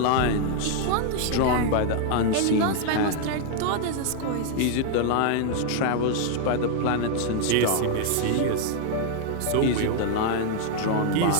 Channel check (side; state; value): both; different; correlation 0.00